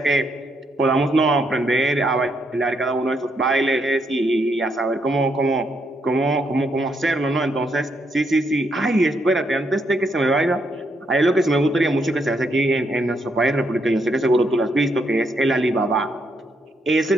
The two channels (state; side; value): normal; both; correlation 0.77